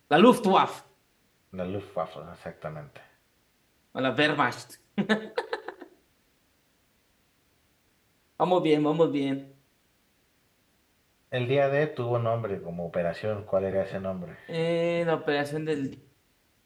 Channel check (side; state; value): both; identical; correlation 1.00